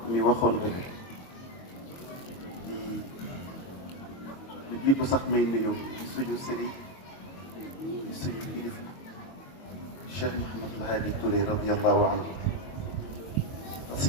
mi waxoon rek di lu jiitu sax may nuyu ci suñu sëriñ ci suñu kilifa Cheikh Mouhamadou Hadi Touré radiyallahu anhu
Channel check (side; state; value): right; late; 22 ms